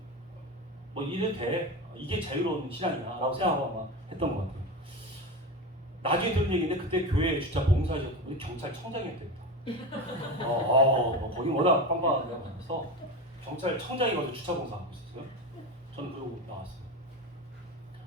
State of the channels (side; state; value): both; normal; correlation 0.23